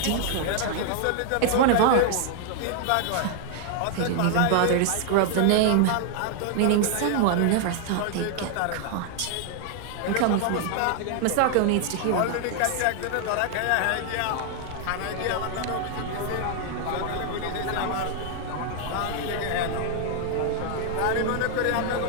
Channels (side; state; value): both; different; correlation 0.00